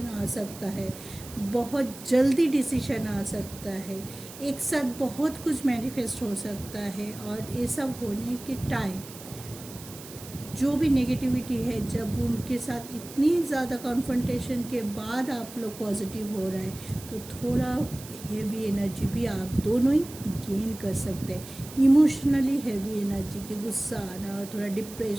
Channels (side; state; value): right; noise; hiss, 15 dB below the sound